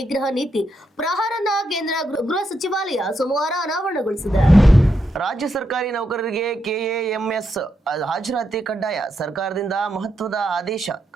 ನೀತಿ ಪ್ರಹಾರನ್ನ ಕೇಂದ್ರ ಗೃಹ ಸಚಿವಾಲಯ ಸೋಮವಾರ ಅನಾವರಣಗೊಳಿಸಿದೆ. ರಾಜ್ಯ ಸರ್ಕಾರಿ ನೌಕರರಿಗೆ ಕೆಎಎಂಎಸ್ ಹಾಜರಾತಿ ಕಡ್ಡಾಯ. ಸರ್ಕಾರದಿಂದ ಮಹತ್ವದ ಆದೇಶ.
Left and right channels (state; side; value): normal; both; correlation 0.82